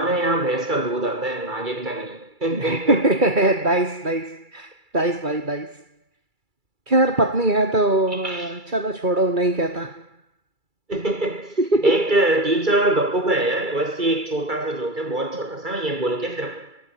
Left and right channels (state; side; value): late; left; 2.3 ms